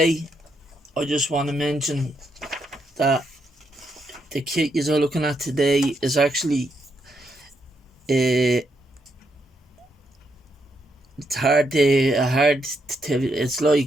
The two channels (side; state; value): both; normal; correlation 0.79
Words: I just want to mention that the kit you're looking at today is actually it's